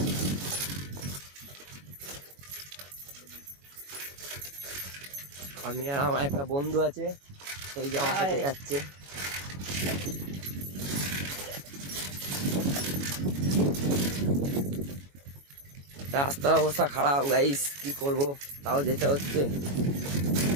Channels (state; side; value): late; left; 21 ms